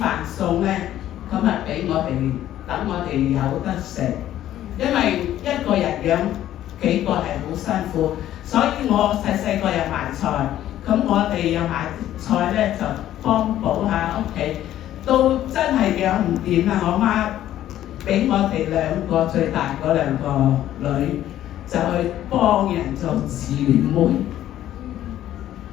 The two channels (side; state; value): right; quieter; 12.5 dB